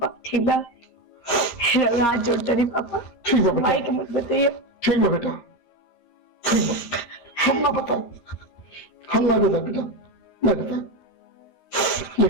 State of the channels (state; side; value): late; right; 13 ms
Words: ठीक बा। हाथ जोड़ते नहीं पापा, ठीक है बेटा, माई के मत बताइए। ठीक है बेटा, ठीक है। हम ना बताओ, हम ना बता बेटा, नहीं बता,